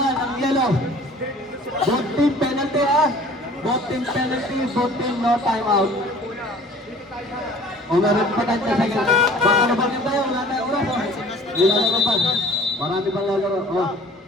ang yellow. Both team penalty ha. Both team penalty, both team no timeout. Oh, meron pa tayo sa second. Baka na bagay tayo, wala tayong oras. Oh. Nilalaro pa. Marami pang lalaro. Oh.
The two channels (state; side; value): normal; both; correlation 0.49